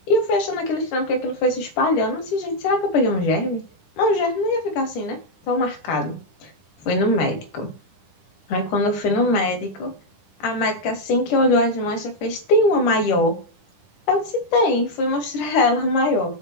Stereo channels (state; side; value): late; right; 10 ms